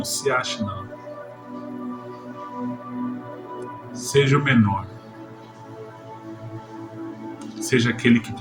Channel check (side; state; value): both; identical; correlation 1.00